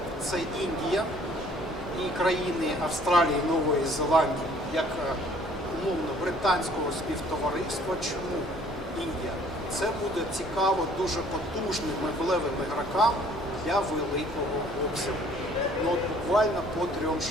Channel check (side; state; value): both; normal; correlation 0.57